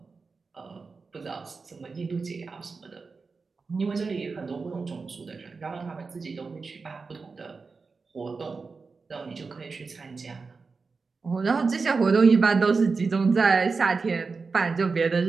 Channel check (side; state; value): left; quieter; 4.5 dB